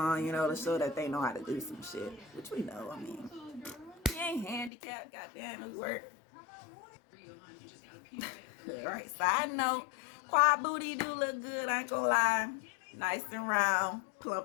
you know, to show that they know how to do some shit. Which we know, I mean. He ain't handicapped, goddamn, it work. Alright, side note, quad booty do look good, I ain't gonna lie. Nice and round,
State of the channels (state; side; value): drops out; right; at 4.7 s